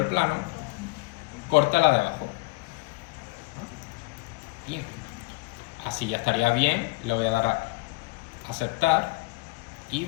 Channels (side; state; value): right; quieter; 23.5 dB